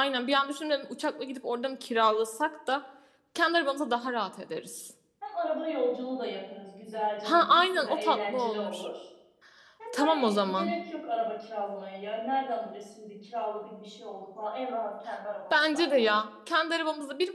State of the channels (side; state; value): both; identical; correlation 1.00